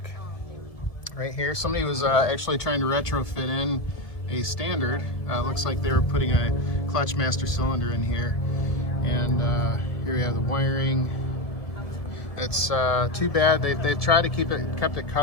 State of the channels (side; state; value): right; late; 1.7 ms